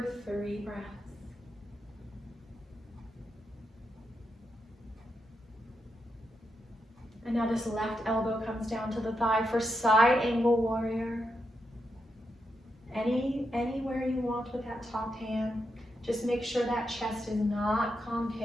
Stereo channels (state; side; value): normal; both; correlation 0.84